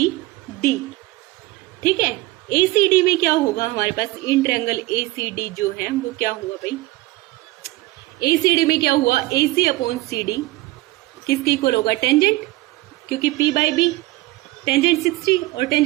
ठीक है, ACD में क्या होगा हमारे पास, इन ट्रायंगल ACD जो है वो क्या हुआ भाई, ACD में क्या हुआ, AC अपॉन CD किसके इक्वल होगा, टेंजेंट, क्योंकि P बाई B, टेंजेंट 60, और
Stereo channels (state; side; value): quieter; left; 19.2 dB